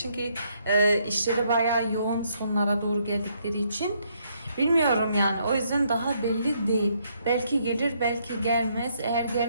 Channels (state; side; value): inverted; both; correlation -0.72